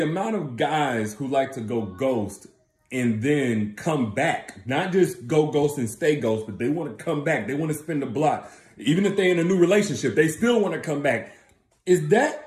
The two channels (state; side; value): identical; both; correlation 1.00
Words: of guys who like to go ghost and then come back, not just go ghost and stay ghost, but they want to come back. They want to spin the block. Even if they're in a new relationship, they still want to come back. Is